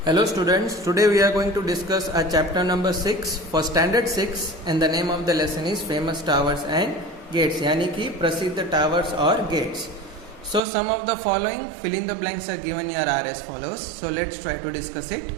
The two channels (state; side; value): drops out; left; at 10.6 s